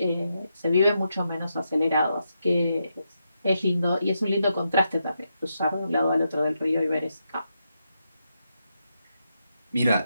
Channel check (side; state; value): both; inverted; correlation -0.84